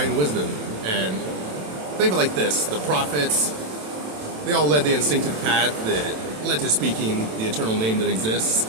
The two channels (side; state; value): left; late; 27 ms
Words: wisdom. And think of it like this: the prophets, they all led the instinctive path that led to speaking the eternal name that exists.